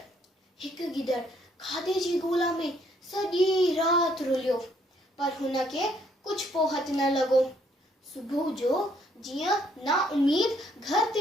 हिकु गिदड़ खाधे जी ॻोल्हा में सॼी राति रुलियो, पर हुनखे कुझु पोहत न लॻो। सुबुह जो जीअं ना उमीद घर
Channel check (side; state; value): both; normal; correlation 0.68